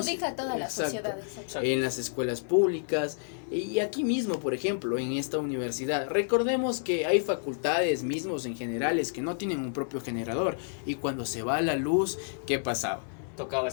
a toda la exacto, sociedad. Exacto. en las escuelas públicas y aquí mismo, por ejemplo, en esta universidad. Recordemos que hay facultades mismos en generales que no tienen un propio generador y cuando se va la luz, ¿qué pasaba? Tocaba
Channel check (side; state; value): right; silent; 58 dB below the other